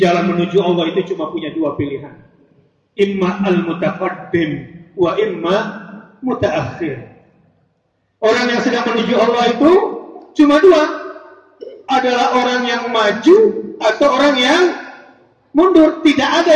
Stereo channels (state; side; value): identical; both; correlation 1.00